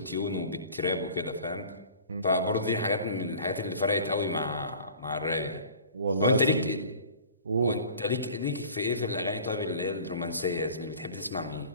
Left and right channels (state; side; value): inverted; both; correlation -0.44